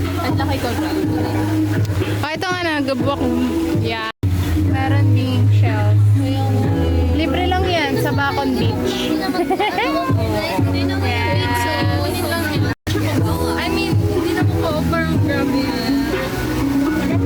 At laki ko. Oh, ito nga na, gabok. Yeah. Meron ding shells. Libre lang yan sa Bacon Beach. I mean, hindi na po pa-offer. Grabe yan.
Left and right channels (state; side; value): identical; both; correlation 1.00